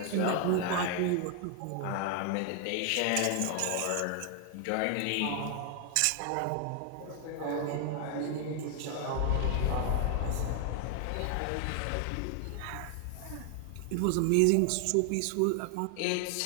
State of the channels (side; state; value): both; different; correlation 0.00